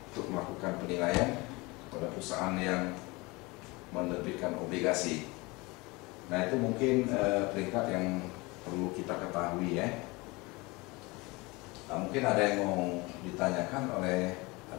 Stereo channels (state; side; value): quieter; right; 24.4 dB